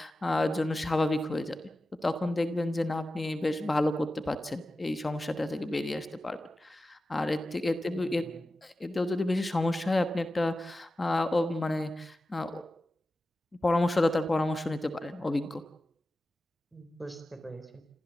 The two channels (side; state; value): both; normal; correlation 0.93